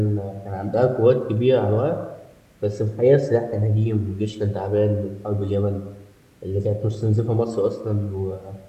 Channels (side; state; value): both; identical; correlation 1.00